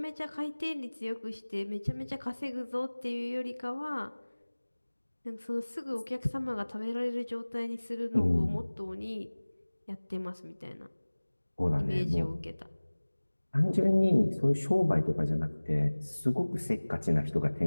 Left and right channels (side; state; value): both; inverted; correlation -1.00